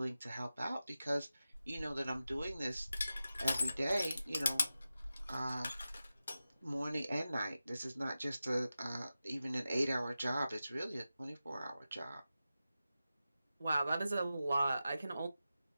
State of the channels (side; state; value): both; inverted; correlation -0.93